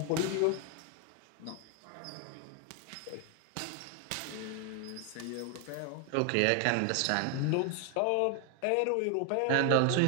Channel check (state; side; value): different; both; correlation 0.00